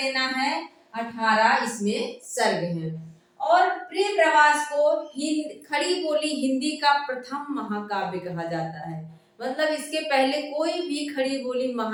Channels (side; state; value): both; identical; correlation 1.00